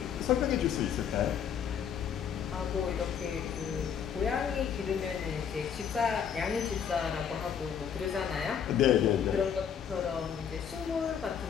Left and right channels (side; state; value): right; quieter; 7.9 dB